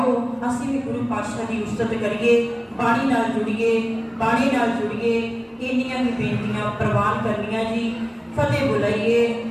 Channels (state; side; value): identical; both; correlation 1.00